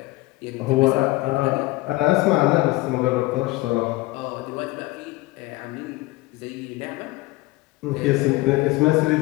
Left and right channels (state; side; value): quieter; right; 19.9 dB